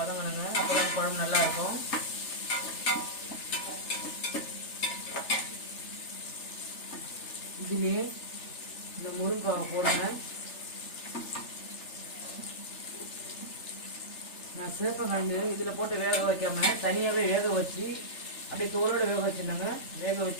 அப்போ தான் குழம்பு நல்லா இருக்கும். இதுலேயே இந்த முருங்கைக்காவை போடுங்க. நான் சேப்பங்கிழங்கு இதில் போட்டு வேக வைக்காமல் தனியாகவே வேக வச்சு அப்படியே தோலோடு வேக வச்சுருந்தேங்க. வேக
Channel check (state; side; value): late; right; 3.4 ms